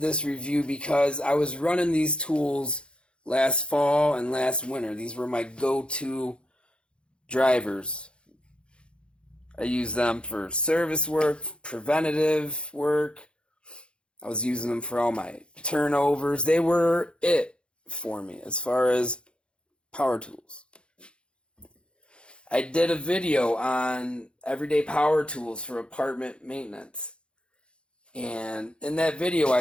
review because I was running these tools last fall and last winter. These were my go-to drivers. I used them for service work, preventative work. I was using them for all my turnovers. They were it for me as far as power tools. I did a video on everyday power tools for apartment maintenance. And in that video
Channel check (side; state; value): right; late; 0.056 ms